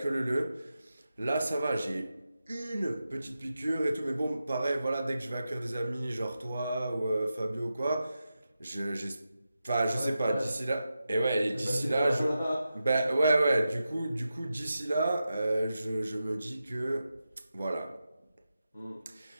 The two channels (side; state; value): both; inverted; correlation -0.90